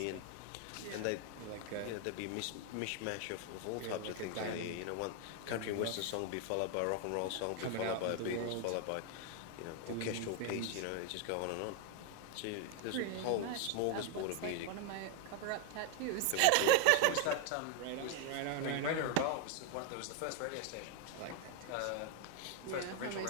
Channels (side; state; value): both; different; correlation 0.00